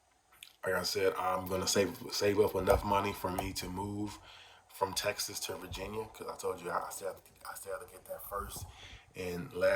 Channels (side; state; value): both; identical; correlation 1.00